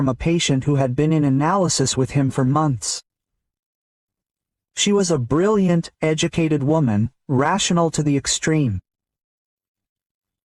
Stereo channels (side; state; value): both; identical; correlation 1.00